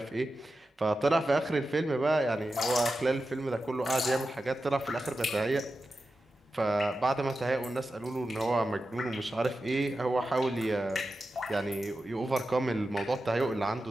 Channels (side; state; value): both; normal; correlation 0.92